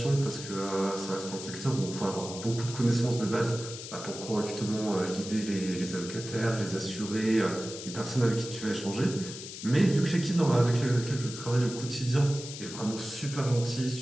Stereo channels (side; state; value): left; noise; hiss, 10 dB below the sound